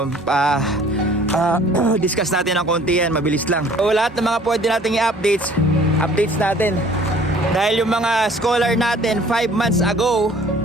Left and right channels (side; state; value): both; normal; correlation 0.53